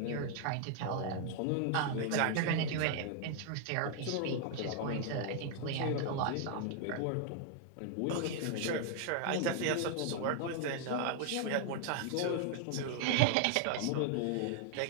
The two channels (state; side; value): different; both; correlation 0.00